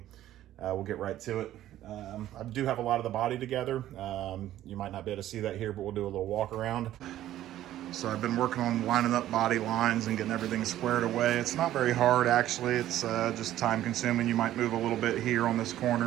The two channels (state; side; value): quieter; left; 13.2 dB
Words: We'll get right to it. I do have a lot of the body together. You might not be able to see that here, but we'll do a little walk around. So I've been working on lining up body lines and getting everything squared away. It's not very hard, actually. It's just time consuming. You might move a little bit here on this